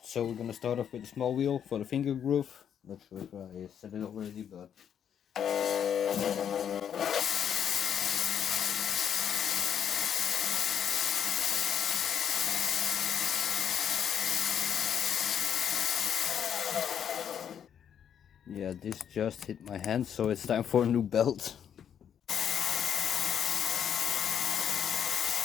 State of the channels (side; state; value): right; quieter; 8.7 dB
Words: So we're gonna start off with a small wheel for the finger groove. Not sure if I said it already, but yeah, this just hit my hand, so it's time for a new belt.